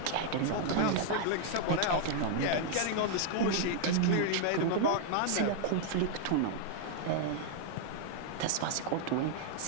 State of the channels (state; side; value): different; both; correlation -0.01